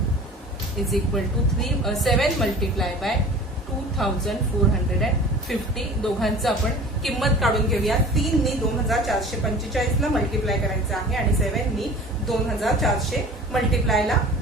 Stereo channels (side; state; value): both; normal; correlation 0.41